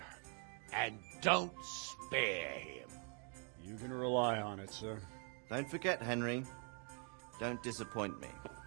And don't spare him. You can rely on it, sir. Don't forget, Henry. Don't disappoint me.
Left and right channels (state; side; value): quieter; left; 39.4 dB